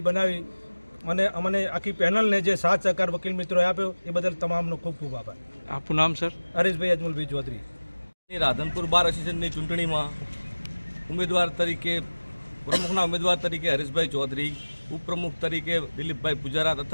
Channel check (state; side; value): inverted; both; correlation -1.00